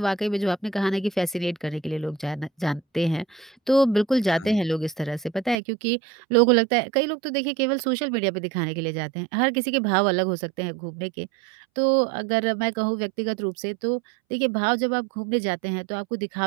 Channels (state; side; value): drops out; left; at 5.6 s